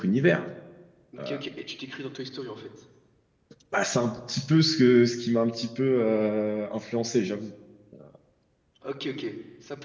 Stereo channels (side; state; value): both; identical; correlation 1.00